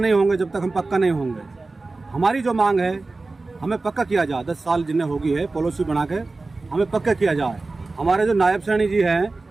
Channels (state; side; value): quieter; left; 3.5 dB